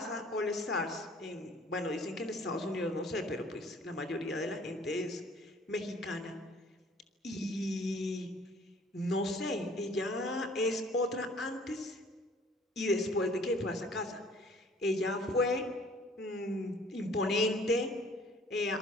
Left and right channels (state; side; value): normal; both; correlation 0.55